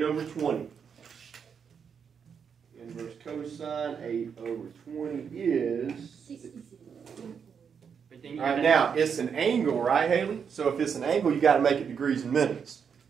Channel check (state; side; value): quieter; left; 6.9 dB